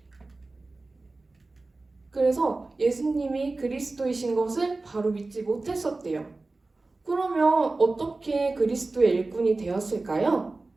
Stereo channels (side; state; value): left; quieter; 3.3 dB